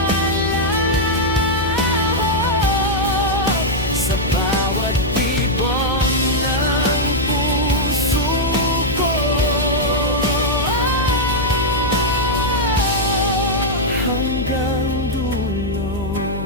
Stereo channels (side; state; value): left; noise; hum, 8 dB below the sound